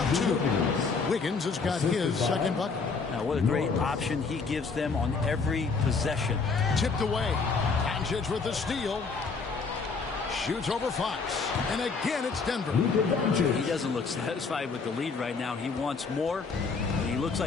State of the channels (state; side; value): quieter; right; 4.7 dB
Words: 2. Wiggins has got his second bucket. Now, what a great option he gives them on every possession. Tipped away. Doncic with the steal. Shoots over Fox. And again, it's Denver. He doesn't look satisfied with the lead right now. He wants more, and he looks